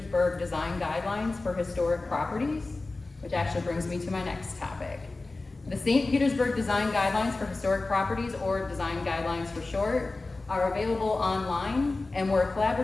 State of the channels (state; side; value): quieter; right; 3.3 dB